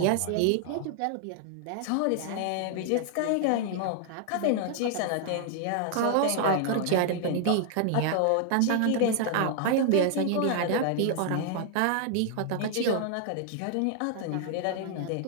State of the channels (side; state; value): both; different; correlation 0.00